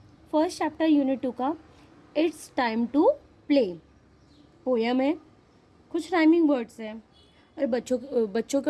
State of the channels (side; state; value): both; identical; correlation 1.00